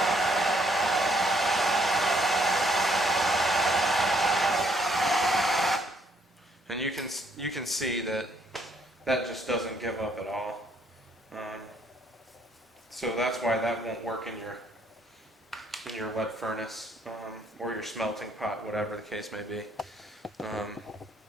And you can see that just doesn't give up at all. So that's why that won't work in your lead furnace or your smelting pot, whatever the case may be.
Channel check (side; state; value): both; normal; correlation 0.68